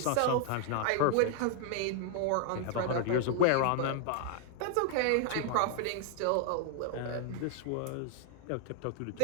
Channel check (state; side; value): different; both; correlation 0.00